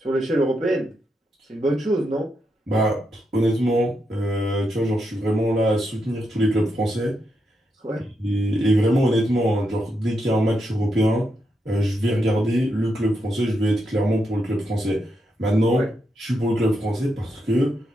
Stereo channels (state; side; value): normal; both; correlation 0.83